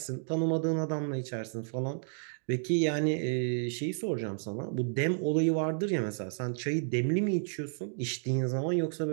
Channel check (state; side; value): silent; left; digital silence